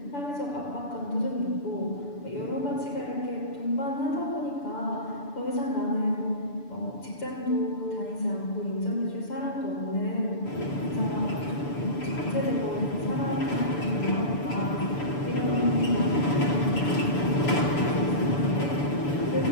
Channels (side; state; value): right; late; 6.9 ms